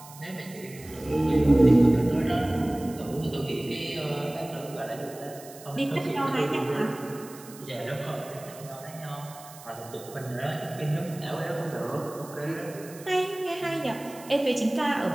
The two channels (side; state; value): right; noise; hiss, 18 dB below the sound